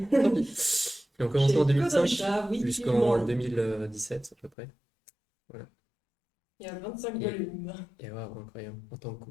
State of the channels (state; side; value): drops out; right; at 4.5 s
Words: Tant pis. Ils ont commencé en 2005 jusqu'en 2017 à peu près. Voilà. Il y a 25 volumes. Et waouh, incroyable. En tant que